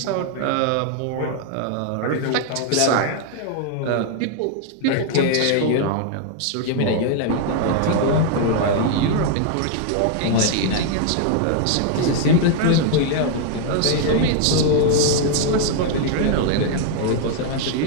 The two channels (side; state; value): both; different; correlation 0.00